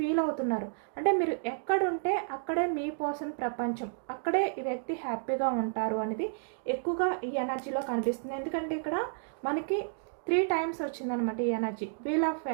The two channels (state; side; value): silent; left; digital silence